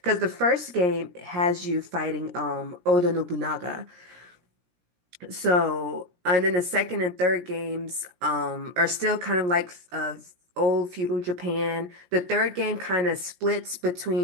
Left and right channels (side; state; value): left; late; 17 ms